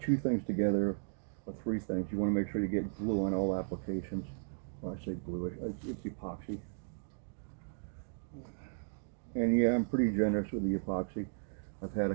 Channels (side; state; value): left; silent; digital silence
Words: two things together or three things, you want to make sure you get glue on all applications. Well, I say glue, it's epoxy. And yeah, I'm pretty generous with the epoxy. I've had